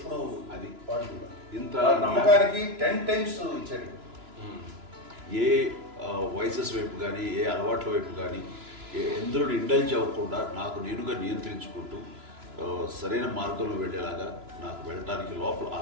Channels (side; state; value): left; late; 2.9 ms